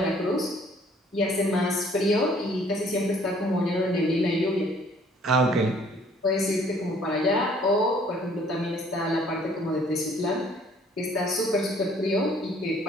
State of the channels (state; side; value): normal; both; correlation 0.59